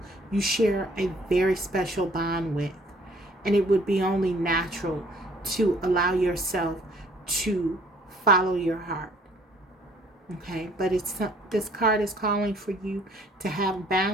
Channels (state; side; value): normal; both; correlation 0.58